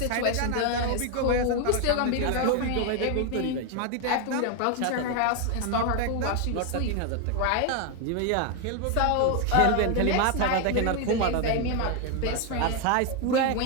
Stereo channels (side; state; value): both; different; correlation 0.01